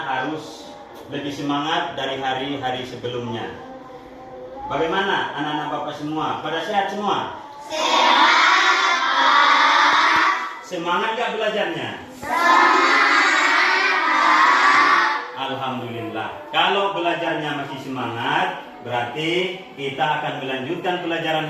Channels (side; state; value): both; identical; correlation 1.00